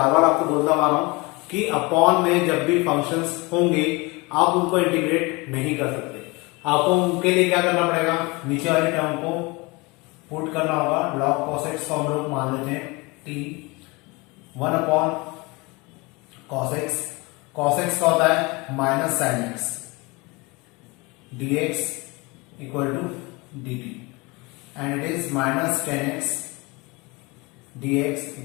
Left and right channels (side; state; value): right; quieter; 25.5 dB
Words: बार आपको बोलता आ रहा हूं कि अपॉन में जब भी फंक्शंस होंगे आप उनको इंटीग्रेट नहीं कर सकते, आपको उनके लिए क्या करना पड़ेगा, नीचे वाली टर्म को पुट करना होगा। log cos x को हम लोग मान लेते हैं t, 1 upon cos x, cos x का होता है minus sine x dx equal to dt and it is minus tan x dx